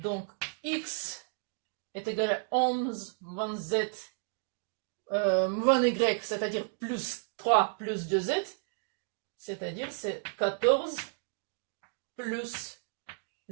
x est égal à 11 moins z moins y, c'est-à-dire plus 3 plus 2z. C'est-à-dire c'est 14 plus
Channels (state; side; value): silent; left; digital silence